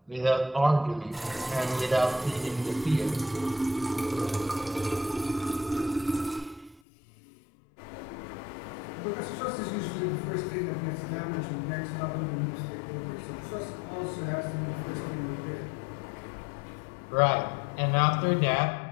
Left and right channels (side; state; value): right; drops out; at 6.8 s